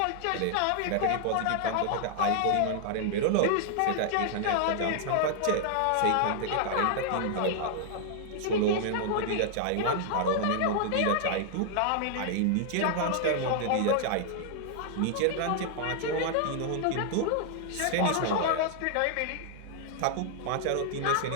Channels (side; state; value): both; different; correlation -0.01